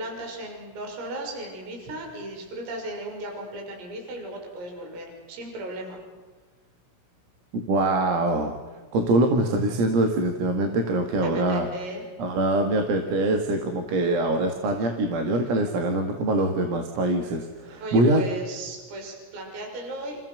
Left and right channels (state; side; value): late; left; 17 ms